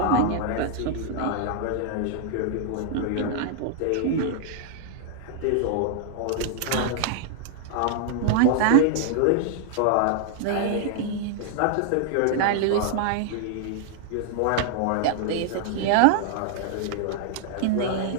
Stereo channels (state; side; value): different; both; correlation -0.01